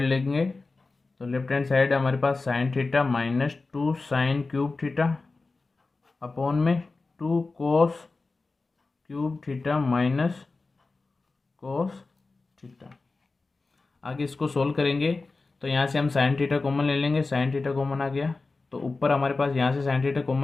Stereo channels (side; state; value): right; quieter; 3.7 dB